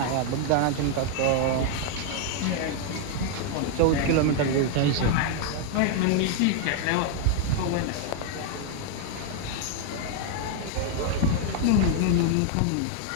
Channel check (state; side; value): different; both; correlation 0.00